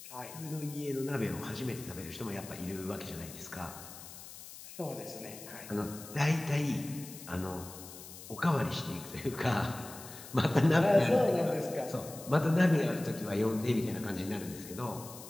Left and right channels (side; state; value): left; noise; hiss, 14 dB below the sound